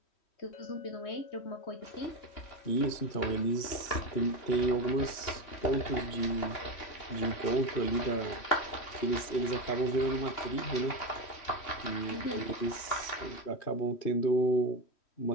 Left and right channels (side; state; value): right; late; 3.1 ms